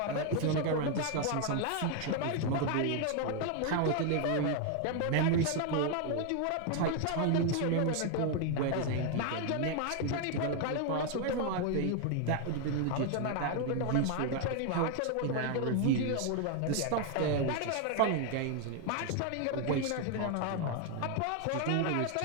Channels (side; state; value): both; different; correlation 0.00